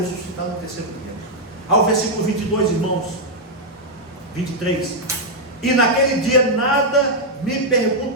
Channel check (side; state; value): both; normal; correlation -0.03